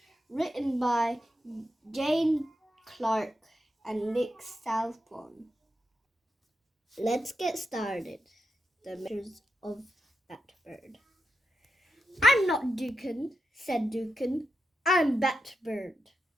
written by Jane Clark and Nick Southbourne. Let's get started. The Adventures of Batbird. I'm not Dukin, said Dukin. I'm Batbird.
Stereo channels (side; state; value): both; normal; correlation 0.87